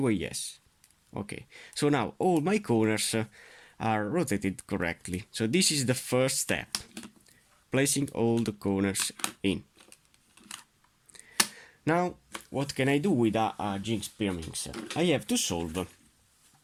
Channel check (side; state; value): both; identical; correlation 1.00